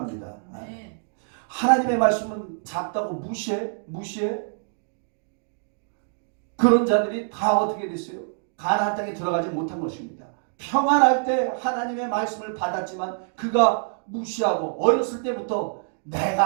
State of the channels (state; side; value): silent; left; digital silence